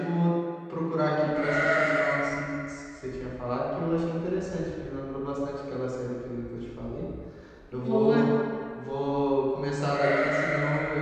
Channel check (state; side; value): identical; both; correlation 1.00